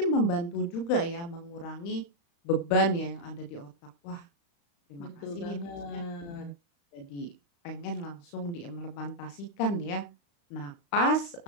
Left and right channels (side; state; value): right; late; 35 ms